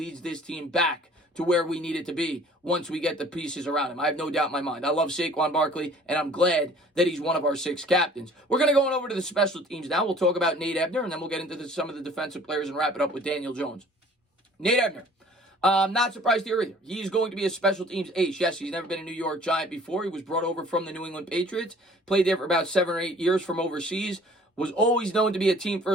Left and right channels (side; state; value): both; normal; correlation 0.52